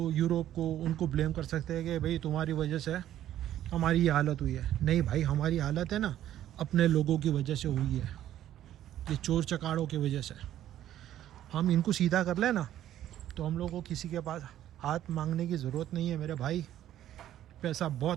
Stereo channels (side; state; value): left; quieter; 12.1 dB